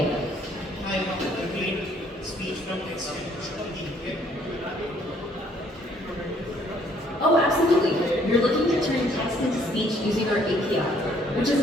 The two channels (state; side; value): normal; both; correlation 0.64